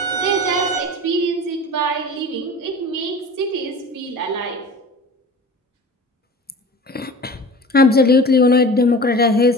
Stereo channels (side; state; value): both; normal; correlation 0.38